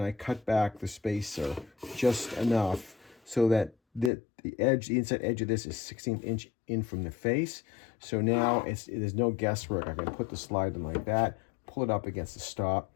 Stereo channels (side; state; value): right; drops out; at 4.1 s